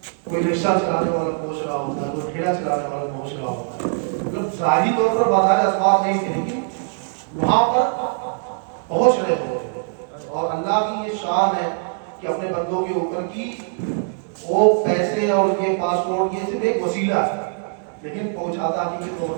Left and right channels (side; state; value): left; silent; 61 dB below the other